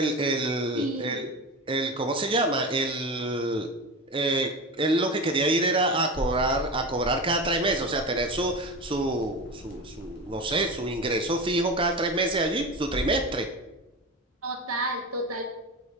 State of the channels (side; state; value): both; normal; correlation 0.25